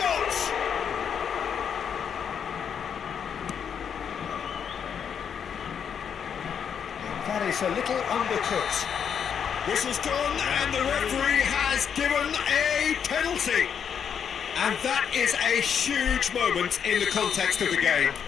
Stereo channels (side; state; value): right; quieter; 7.6 dB